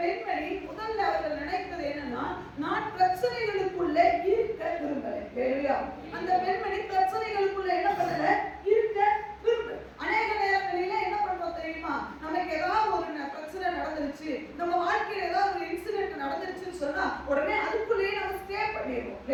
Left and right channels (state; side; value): identical; both; correlation 1.00